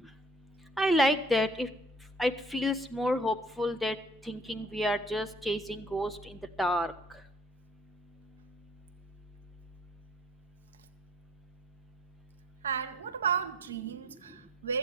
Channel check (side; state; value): both; normal; correlation 0.56